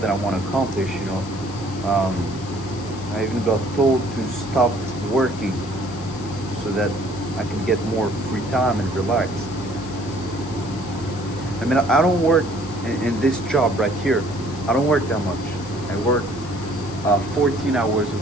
that I want to accomplish. I even got told to stop working so that I can get more free time and relax. I mean, I don't work in this job right here. I don't work that much. I work 14 hours a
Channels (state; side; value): noise; left; hiss, 17 dB below the sound